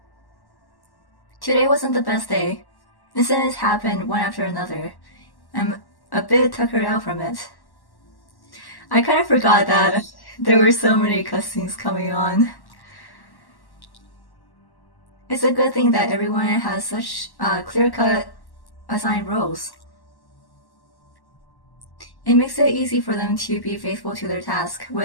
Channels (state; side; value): late; right; 1.1 ms